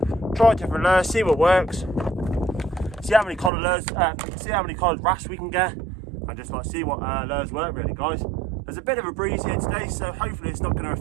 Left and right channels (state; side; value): drops out; left; at 3.5 s